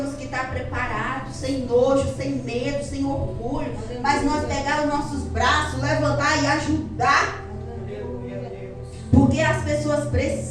que estar preparados, sem nojo, sem medo, sem orgulho. Mas nós pegar os nossos braços, levantar e ajudar. Porque as pessoas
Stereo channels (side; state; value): both; identical; correlation 1.00